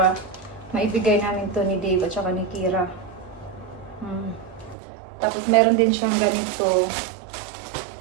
maibigay namin to ni Dave at saka ni Kira. Tapos, meron din siyang ganito.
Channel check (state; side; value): drops out; left; at 4.8 s